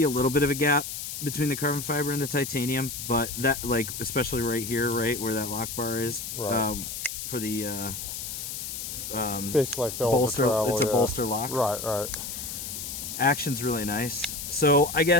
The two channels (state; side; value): noise; left; hiss, 6 dB below the sound